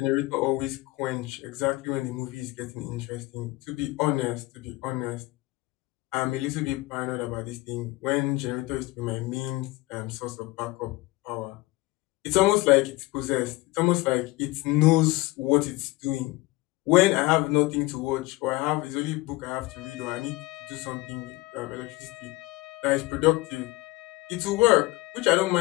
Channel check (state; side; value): quieter; right; 20.7 dB